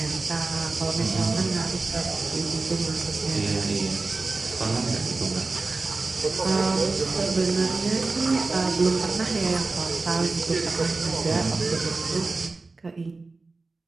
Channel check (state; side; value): quieter; left; 3.7 dB